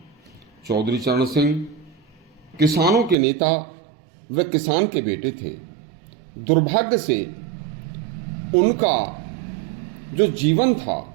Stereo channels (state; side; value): drops out; left; at 3.2 s